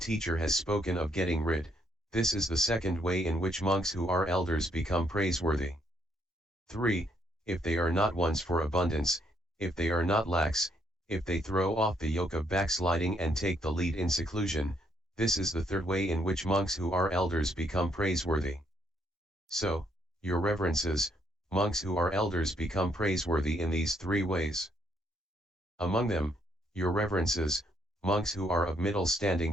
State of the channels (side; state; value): both; normal; correlation 0.72